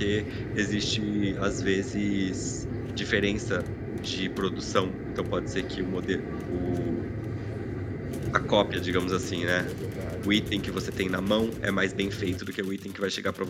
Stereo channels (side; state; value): both; identical; correlation 1.00